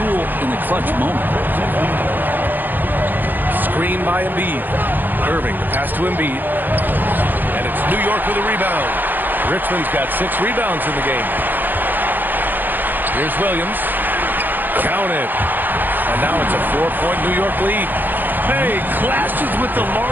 cool in the clutch moment. Screen by Embiid. Irving, the pass to Embiid. And it's New York with a rebound. Richmond's got 6 rebounds in the game. Here's Williams. Counted. And now it's a 4-point New York lead. Hey, clashes with the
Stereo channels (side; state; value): left; late; 0.089 ms